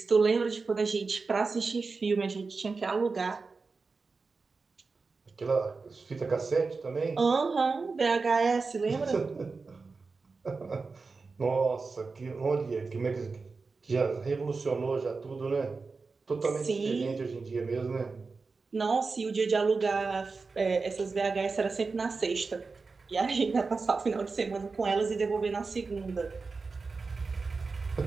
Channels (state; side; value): quieter; left; 4.3 dB